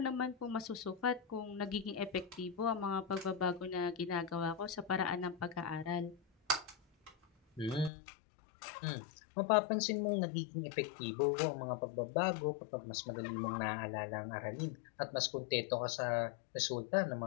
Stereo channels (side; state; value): right; drops out; at 7.9 s